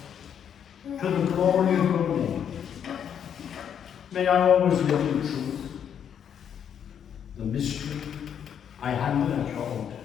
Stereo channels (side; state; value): right; quieter; 8.5 dB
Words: to the glory of your name. May I always live in truth. The mystery I hand at your altar.